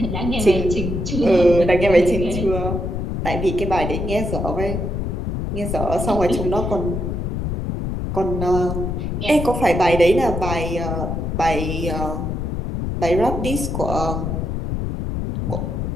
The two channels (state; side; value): noise; left; rumble, 2 dB below the sound